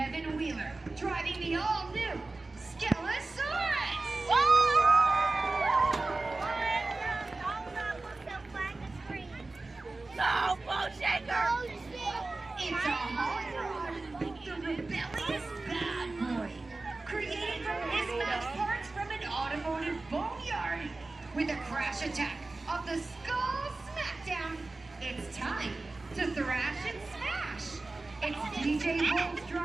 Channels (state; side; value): quieter; left; 3.3 dB